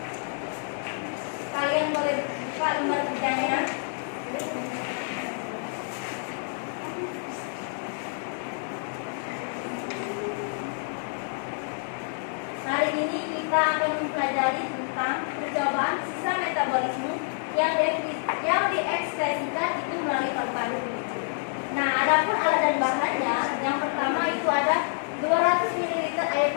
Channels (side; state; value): right; silent; 58 dB below the other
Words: Kalian boleh buka lembar kerjanya. Hari ini kita akan mempelajari tentang percobaan sisa metabolisme yang diekspresikan itu melalui paru-paru. Nah, adapun alat dan bahannya, yang pertama itu ada 200 ml air